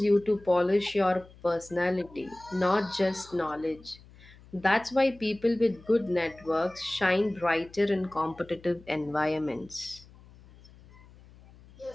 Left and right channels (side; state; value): left; noise; hum, 23 dB below the sound